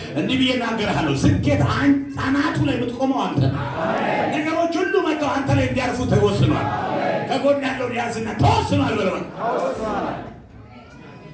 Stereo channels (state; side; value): identical; both; correlation 1.00